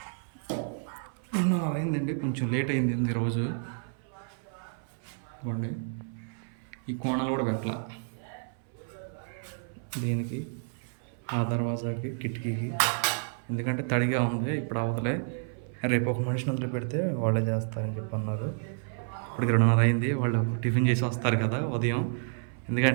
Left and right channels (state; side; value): silent; left; 58 dB below the other